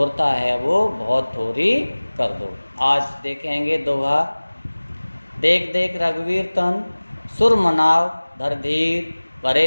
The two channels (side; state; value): both; inverted; correlation -1.00